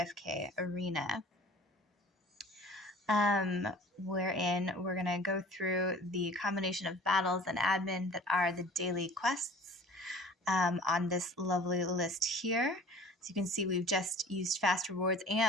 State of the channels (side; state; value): both; normal; correlation 0.46